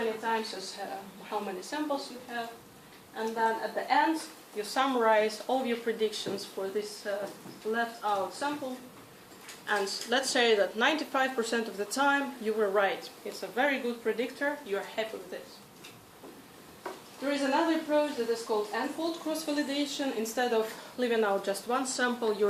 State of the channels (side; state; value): both; identical; correlation 1.00